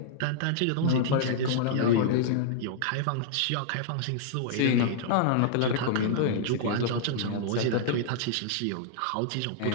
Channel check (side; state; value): both; different; correlation -0.01